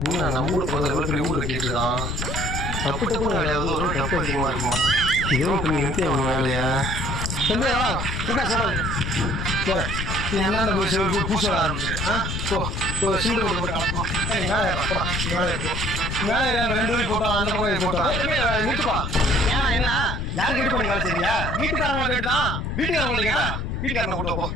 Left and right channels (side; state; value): left; noise; rumble, 3 dB below the sound